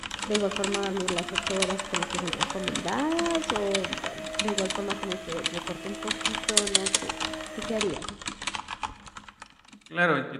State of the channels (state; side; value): identical; both; correlation 1.00